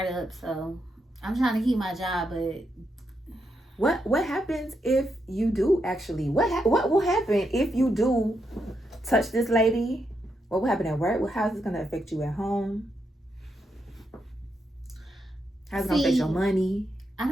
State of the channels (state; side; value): normal; both; correlation 0.82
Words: so I'm trying to keep my job, but... What happens if you do actually? What will happen if you do touch this lady? What will happen at work? How is this going to affect you at home? How's it going to affect your money? I